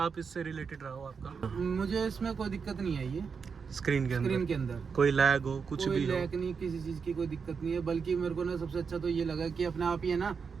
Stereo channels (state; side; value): quieter; left; 5.8 dB